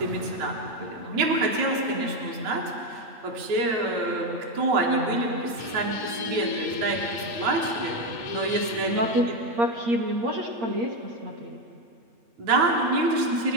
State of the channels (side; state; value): left; late; 8.6 ms